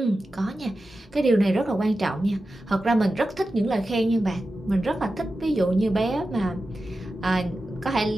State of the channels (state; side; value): normal; both; correlation 0.92